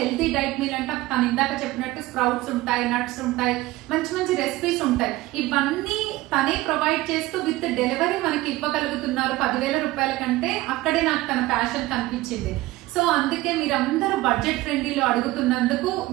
డైట్ మీల్ అంటే తను ఇందాక చెప్పినట్టు స్ప్రౌట్స్ ఉంటాయి, నట్స్ ఉంటాయి, మంచి మంచి రెసిపీస్ ఉంటాయి, ఇవన్నీ తనే ప్రొవైడ్ చేస్తూ విత్ డెలివరీ మనకి ఇవ్వగలుగుతున్నారు 10,000 రూపాయల కంటే. అక్కడే నాకు తన ప్యాషన్ కనిపించింది. సో అందుకే మీరందరూ బడ్జెట్ ఫ్రెండ్లీలో అడుగుతున్నందుకు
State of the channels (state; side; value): quieter; left; 18.5 dB